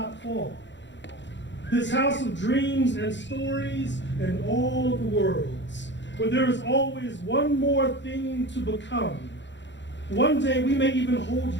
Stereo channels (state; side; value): late; right; 0.52 ms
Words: fall. This house of dreams and stories and all of the worlds, where there is always one more thing to become. One day we may even hold